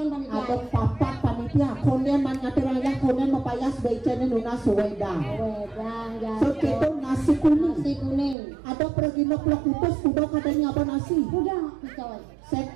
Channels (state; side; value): drops out; left; at 8.3 s